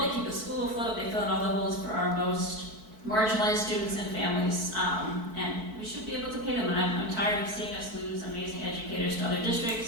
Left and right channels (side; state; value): left; late; 4.6 ms